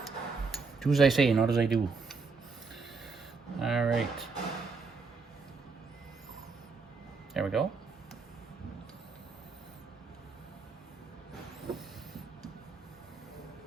Do as I say, not as I do. All right. There we go.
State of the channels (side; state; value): left; quieter; 4.6 dB